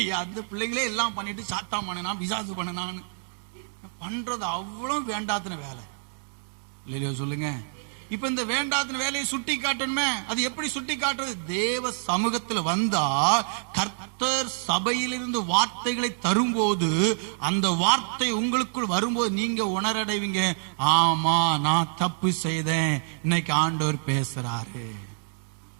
அந்த பிள்ளைங்களே எல்லாம் பண்ணிட்டு சாத்தா பண்ணனா, பிசாசு பண்ணனான்னு பண்றது அவ்வளவு வேண்டாத்தின வேலை. இல்லையோ சொல்லுங்க. இப்ப இந்த வேண்டாத்தின வேலையை சுட்டி காட்டணுமே. அது எப்படி சுட்டி காட்டுறது? தேவ சமூகத்தில் வந்தா கர்த்தர் சபையிலிருந்து வார்த்தைகளை தரும்போது, அந்த வார்த்தை உங்களுக்குள் வரும்போது நீங்க உணரடைவீங்க, ஆமா நான் தப்பு செய்தேன், இன்னைக்கு ஆண்டவர் பேசுறாரு.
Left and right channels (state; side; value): silent; left; digital silence